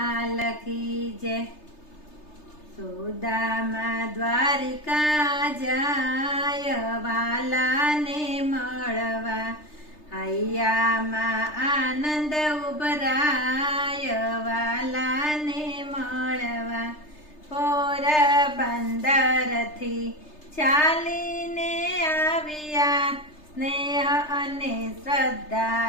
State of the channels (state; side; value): late; right; 3.3 ms